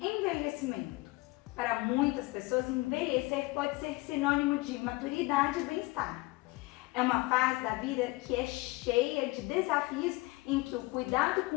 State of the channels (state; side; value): quieter; right; 22.7 dB